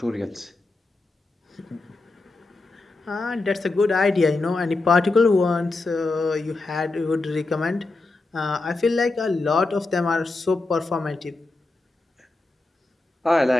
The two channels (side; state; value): right; quieter; 3.3 dB